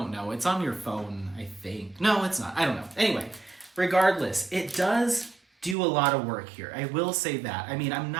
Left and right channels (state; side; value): drops out; left; at 5.8 s